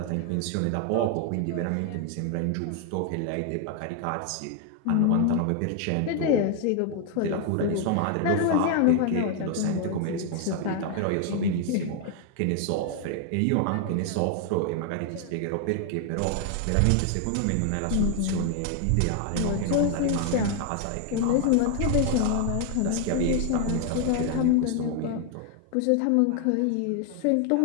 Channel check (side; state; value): both; different; correlation 0.00